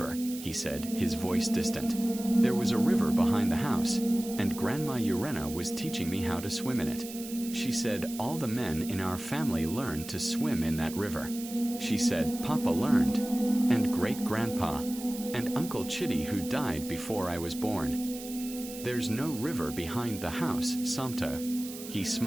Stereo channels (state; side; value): noise; right; hiss, 12 dB below the sound